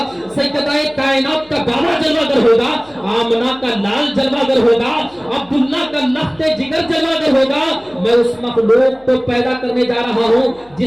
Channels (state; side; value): noise; left; hum, 29 dB below the sound